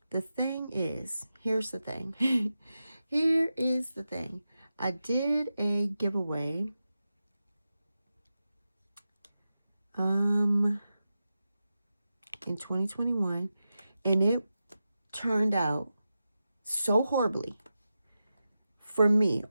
The thing is, here's the thing. Here is the thing. I did a giveaway in 2021, and it turned out so horribly for me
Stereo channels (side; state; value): both; inverted; correlation -0.91